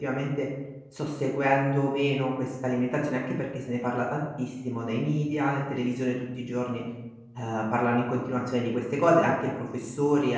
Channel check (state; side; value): identical; both; correlation 1.00